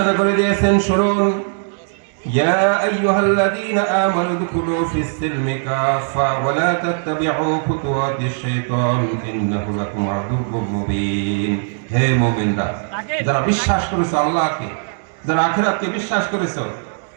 করে দিয়েছেন, শুনুন, ইয়া আইয়ুহাল্লাযীনা আমানু দুখুলু ফিস সিলমি কাফা ওয়া লা তাত্তাবিউ খুতুওয়াতিশ শাইতান ইন্নাহু লাকুম আদুউউম মুবিন। হে মুমিনরা, যারা বিশ্বাস করেছো আল্লাহকে, যারা আখিরাতকে বিশ্বাস করেছো,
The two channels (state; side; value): silent; left; digital silence